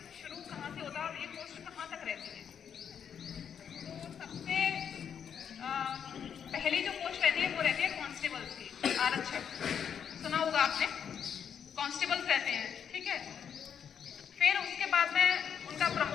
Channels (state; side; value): quieter; right; 7.9 dB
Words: शुरू कहाँ से होता है और ये पोस्ट कहाँ तक रहती है। तो सबसे पहली जो पोस्ट रहती है वो रहती है कांस्टेबल्स की, आरक्षक। सुना होगा आपने, कांस्टेबल्स रहते हैं, ठीक है। फिर उसके बाद में उनका